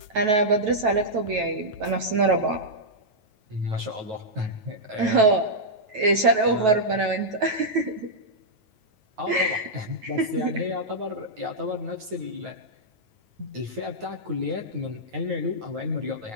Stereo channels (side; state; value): left; late; 9.2 ms